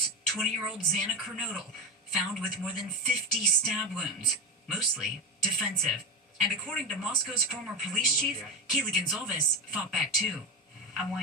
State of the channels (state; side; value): normal; both; correlation 0.18